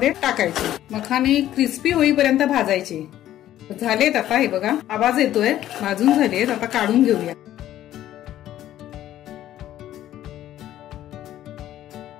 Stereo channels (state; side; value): quieter; right; 12.8 dB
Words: टाकायचे. मखाने क्रिस्पी होईपर्यंत भाजायचे. झालेत आता. हे बघा आवाज येतोय. भाजून झालेत. आता काढून घेऊया.